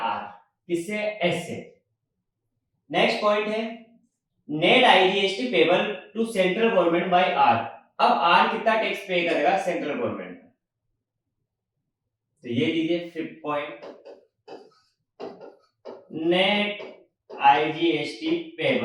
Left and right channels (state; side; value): identical; both; correlation 1.00